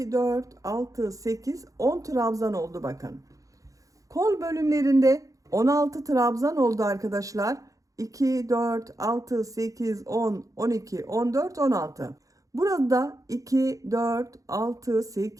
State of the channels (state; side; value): late; left; 0.16 ms